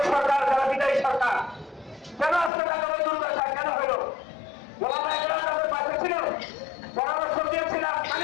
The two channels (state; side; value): drops out; right; at 2.5 s